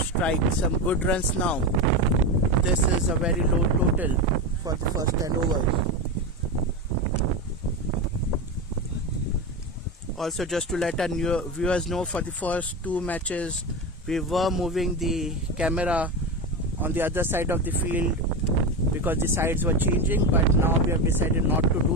strike some good runs now. This is a very low total for the first 10 overs. Also, just to let our new viewers know, for the first 2 matches we were moving the camera on the other side of the field because the sides were changing, but now we have decided not to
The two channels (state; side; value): normal; both; correlation 0.19